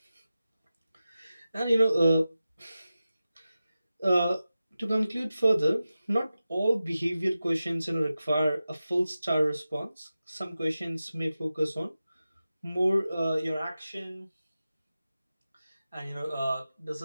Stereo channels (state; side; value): inverted; both; correlation -0.94